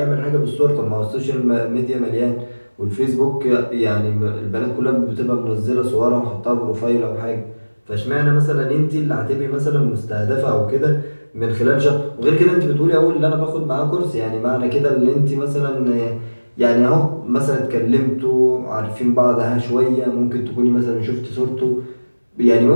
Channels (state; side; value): inverted; both; correlation -1.00